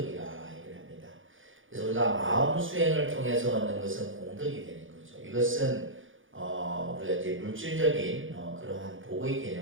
얘기를 합니다. 그래서 우리가 마음 수행을 통해서 얻는 것은 공덕이 되는 거죠. 이것은 우리가 이제 물질적인 그러한 복의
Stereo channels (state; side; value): late; left; 0.58 ms